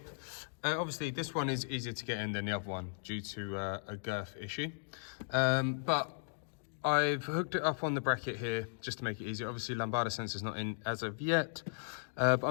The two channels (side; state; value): right; silent; digital silence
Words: Obviously, this one is easier to get in than the other one due to a girth issue. But I've hooked it up on the bracket here just to make it easier. Obviously, lambada sensor's not in as of yet. But